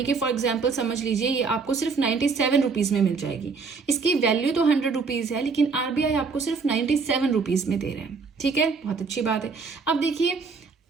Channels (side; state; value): left; quieter; 4.9 dB